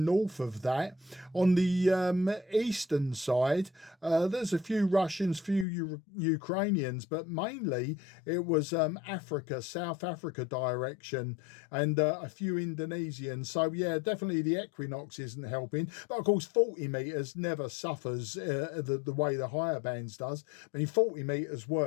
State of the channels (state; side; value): drops out; right; at 5.7 s